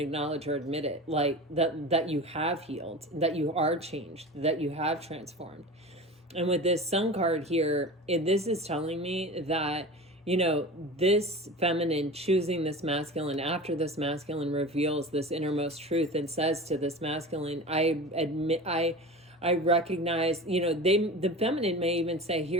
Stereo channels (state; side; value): normal; both; correlation 0.33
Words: or admit it, like that you have healed, that you are changed, that you have transformed. And with this sun card here, this is telling me that, you know, this feminine choosing this masculine after this masculine reveals this innermost truth and says to this masculine, I recognize, you know, the feminine may even say,